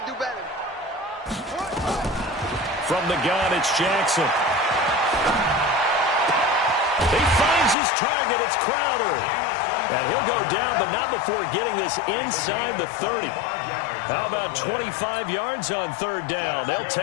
do better. From the gun, it's Jackson. He finds his target. It's Crowder. And he'll go down, but not before getting this inside the 30. How about 25 yards on 3rd down? They'll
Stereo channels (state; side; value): drops out; right; at 7.8 s